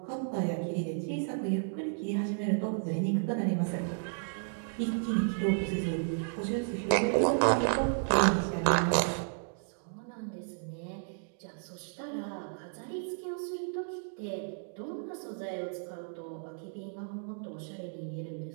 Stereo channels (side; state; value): left; silent; digital silence